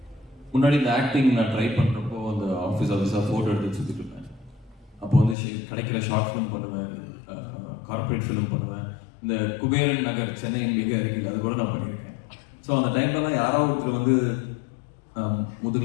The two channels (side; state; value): right; drops out; at 5.4 s